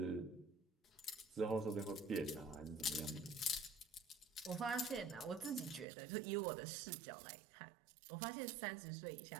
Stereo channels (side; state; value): left; drops out; at 5.9 s